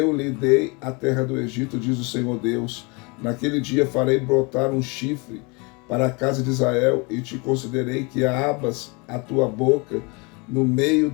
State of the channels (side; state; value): right; quieter; 29.6 dB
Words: lhe dei a terra do Egito, diz o Senhor Deus. Naquele dia farei brotar um chifre para a casa de Israel, e te considerei que abras a tua boca no meio